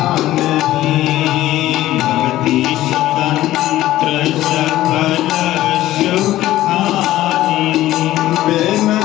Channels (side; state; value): right; quieter; 14.9 dB